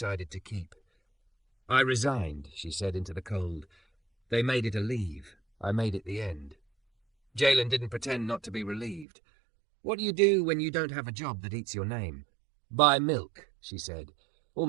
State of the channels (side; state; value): left; drops out; at 9.1 s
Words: to keep. "I resigned," she said into the cold. "They made it a leave. I made it the end." Jalen didn't pretend not to be relieved. "What do you do when you don't have a job that eats your name?" "Buy milk," she said,